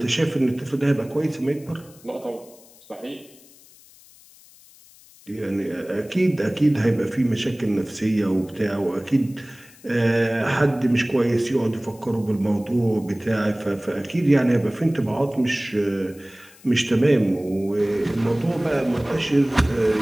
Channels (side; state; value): left; noise; hiss, 25 dB below the sound